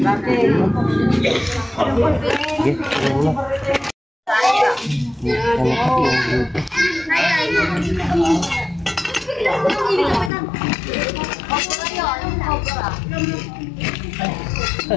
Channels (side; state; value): right; drops out; at 10.3 s